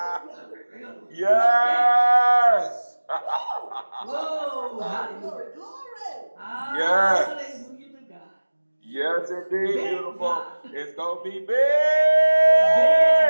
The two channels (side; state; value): both; inverted; correlation -1.00